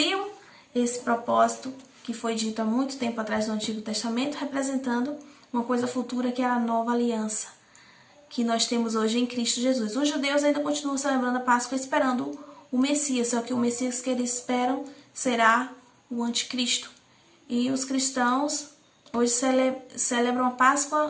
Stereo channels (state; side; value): identical; both; correlation 1.00